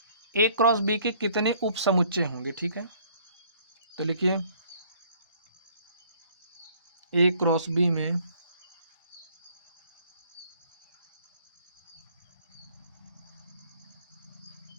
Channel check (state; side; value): inverted; both; correlation -0.60